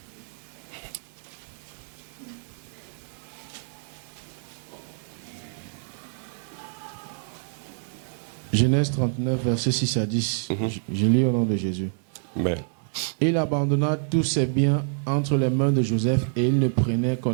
Genèse 39, versets 6 à 10. Je lis au nom de Jésus. Amen. Il abandonna tous ses biens entre les mains de Joseph et il ne prenait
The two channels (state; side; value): silent; left; digital silence